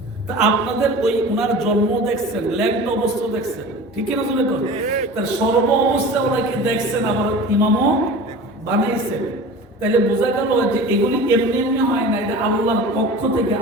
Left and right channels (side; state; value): both; normal; correlation 0.36